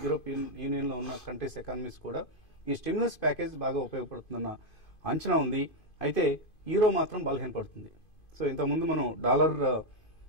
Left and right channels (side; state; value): right; late; 2.5 ms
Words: యూరోపియన్ యూనియన్ లో ఉన్న కంట్రీస్ ఎకానమీస్ కూడా ఈ స్టిమ్యులస్ ప్యాకేజ్ బాగా ఉపయోగపడుతుందన్న అంచనా ఉంది. అయితే యూరో మాత్రం బలహీనపడుతుంది. సో ఇంతకుముందు మనం డాలర్